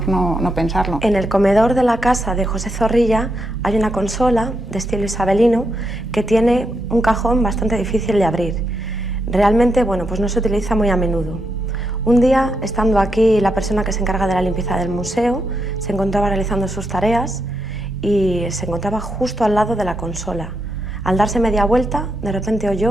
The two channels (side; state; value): both; normal; correlation 0.82